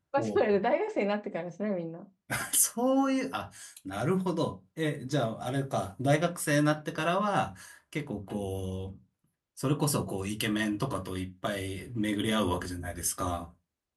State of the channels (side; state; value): both; identical; correlation 1.00